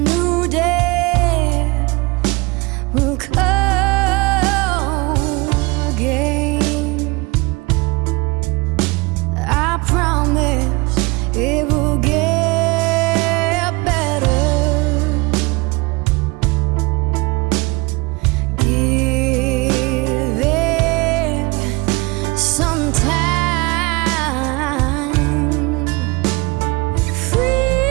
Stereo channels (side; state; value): left; quieter; 25.0 dB